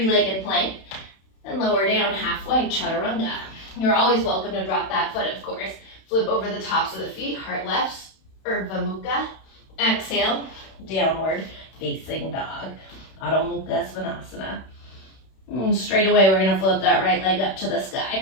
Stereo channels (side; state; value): right; late; 31 ms